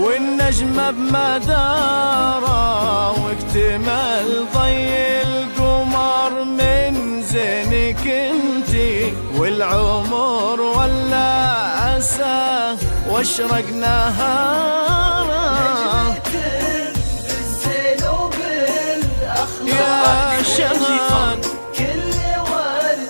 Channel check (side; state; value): both; inverted; correlation -1.00